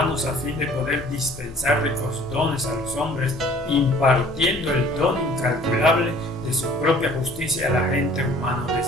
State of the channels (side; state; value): both; normal; correlation 0.52